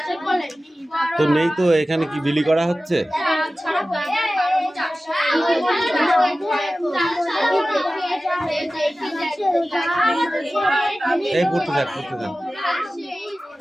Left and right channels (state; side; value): normal; both; correlation 0.95